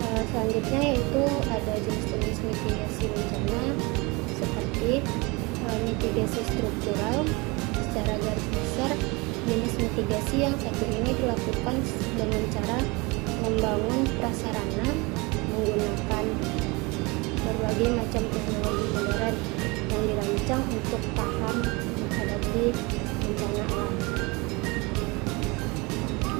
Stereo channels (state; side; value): quieter; left; 26.3 dB